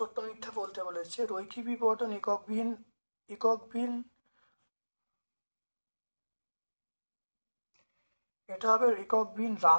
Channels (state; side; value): inverted; both; correlation -1.00